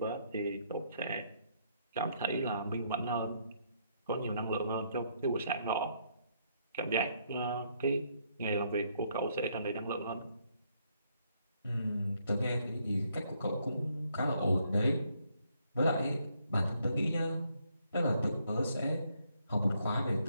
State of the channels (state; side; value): inverted; both; correlation -0.72